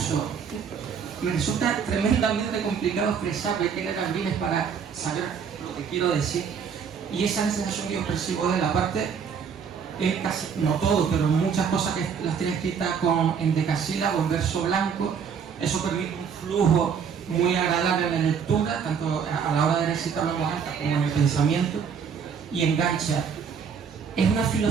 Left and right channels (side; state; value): left; quieter; 6.8 dB